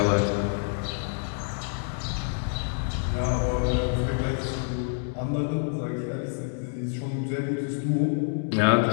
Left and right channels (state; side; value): silent; right; 60 dB below the other